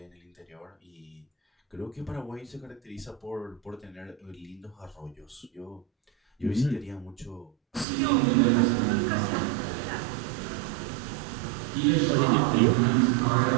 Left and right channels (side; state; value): left; drops out; at 7.9 s